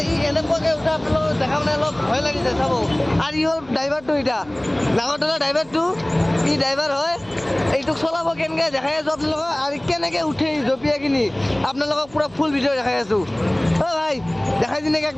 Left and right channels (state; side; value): noise; right; hum, 26 dB below the sound